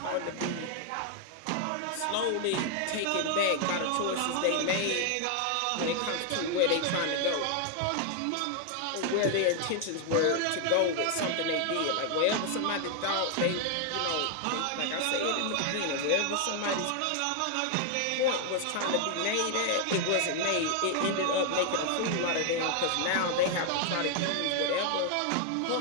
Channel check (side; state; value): both; different; correlation 0.00